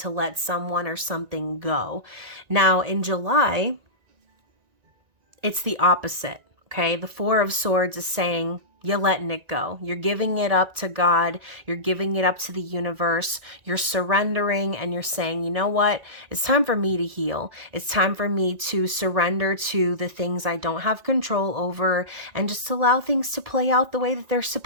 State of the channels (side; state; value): left; late; 1.9 ms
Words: let someone or something go. Now, in July, it's the opposite, okay? The Four of Swords is saying, you're letting it go. You're giving it up to God. You're giving it up to the universe. You're surrendering and you're saying, you know what? It's time for me to heal. It's time for me to surrender to the things I don't have control over and just allow things to play out the way that they're